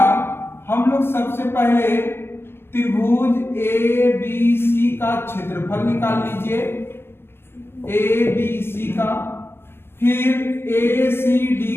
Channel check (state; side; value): late; right; 0.11 ms